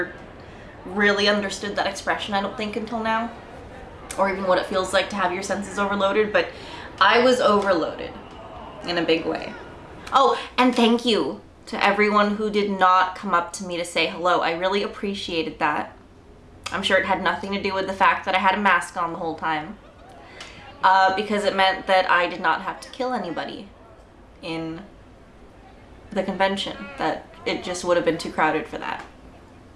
really understood that expression, I don't think, until now. Or even what it feels like to have your senses overloaded, but I was overloaded in a big way. Oh, and thank you to everyone who did not come up to me to say hello. I really appreciated that. I'm sure it had nothing to do with the fact that I had a mask on the whole time. Because it meant that I did not have to kill anybody in the convention. That it just would have been too crowded for that.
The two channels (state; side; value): identical; both; correlation 1.00